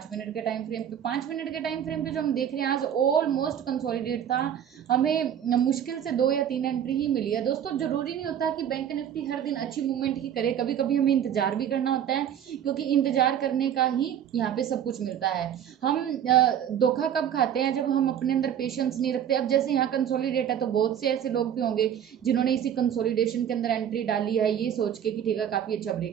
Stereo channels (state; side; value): quieter; left; 9.5 dB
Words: मिनट के टाइम फ्रेम पे। 5 मिनट के टाइम फ्रेम पे जो हम देख रहे हैं आज ऑलमोस्ट कंसोलिडेट था, हमें मुश्किल से 2 या 3 एंट्री ही मिली है। दोस्तों जरूरी नहीं होता कि बैंक निफ्टी हर दिन अच्छी मूवमेंट ही करे, कभी कभी हमें इंतजार भी करना होता है, क्योंकि इंतजार करने का ही यहाँ पे सब कुछ मिलता है। हम धोखा कब खाते हैं, जब हम अपने अंदर पेशेंस नहीं रखते। अब जैसे यहाँ कंसोलिडेट है तो बहुत से ऐसे लोग भी होंगे जिन्होंने इसी कंसोलिडेशन के अंदर एंट्री डाली है ये सोच के कि ठीक है काफी अच्छा